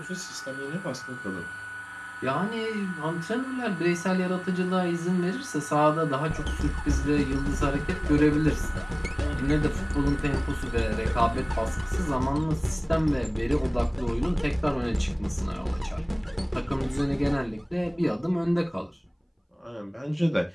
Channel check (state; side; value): identical; both; correlation 1.00